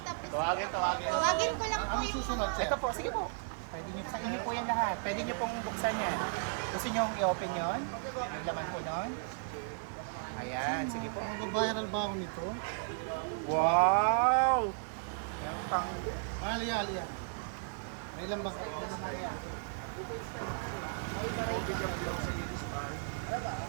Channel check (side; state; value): left; silent; 55 dB below the other